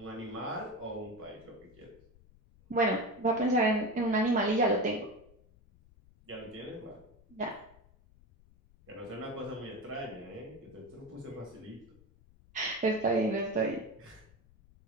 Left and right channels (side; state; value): left; noise; rumble, 26 dB below the sound